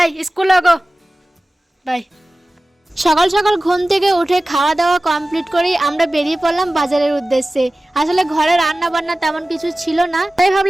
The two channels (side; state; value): both; normal; correlation 0.97